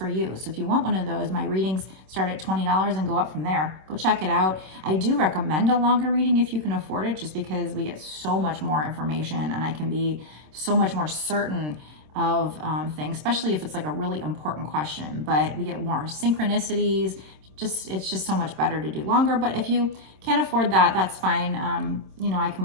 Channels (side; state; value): left; late; 26 ms